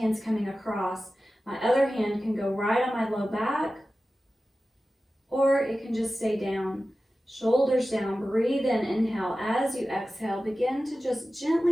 coming across. My other hand can go right on my low back, or it can just stay down. Shoulders down, breathe in, inhale. As you exhale, begin to just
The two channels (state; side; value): normal; both; correlation 0.95